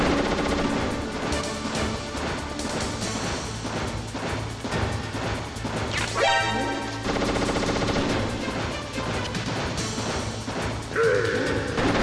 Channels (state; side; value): identical; both; correlation 1.00